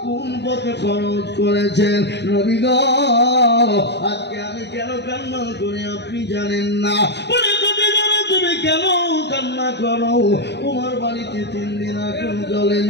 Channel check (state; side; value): late; right; 0.50 ms